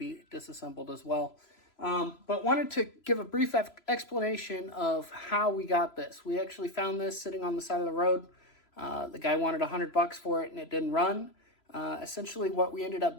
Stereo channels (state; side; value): late; right; 3.0 ms